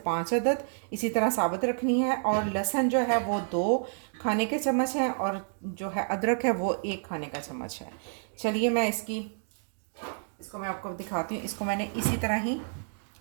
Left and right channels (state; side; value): silent; left; digital silence